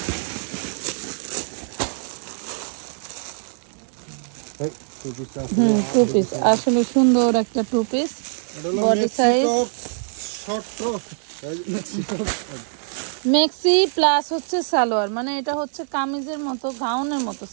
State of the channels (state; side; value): silent; left; digital silence